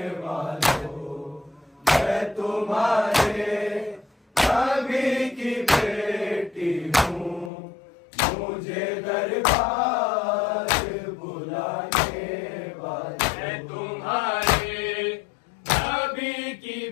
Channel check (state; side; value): drops out; right; at 7.5 s